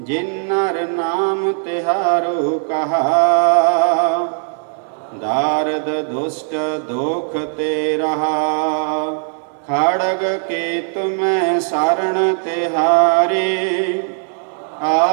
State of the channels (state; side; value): silent; left; 67 dB below the other